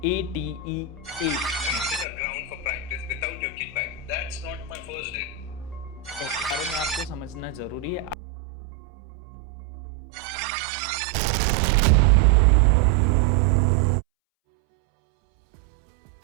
ATE, ground for practice without your kickback. That's not my first day. बारे में आपको समझना जरूरी है। आपने ऑलरेडी ये सुना होगा कि 5 फॉर्म होते हैं। तो हो जाइए तैयार बनने के लिए ज्यादा समझदार,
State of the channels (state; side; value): drops out; left; at 8.2 s